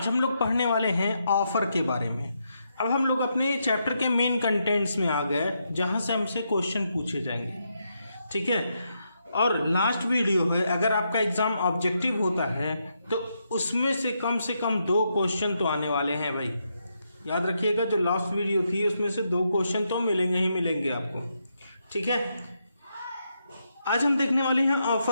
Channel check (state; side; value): inverted; both; correlation -0.81